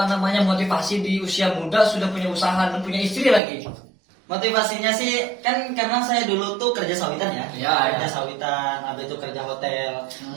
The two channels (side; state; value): left; drops out; at 3.4 s